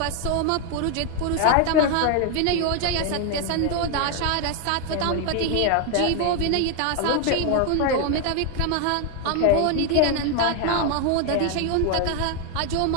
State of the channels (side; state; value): both; different; correlation 0.01